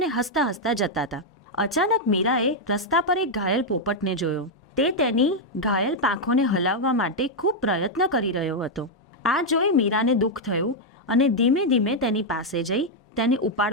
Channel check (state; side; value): normal; both; correlation -0.01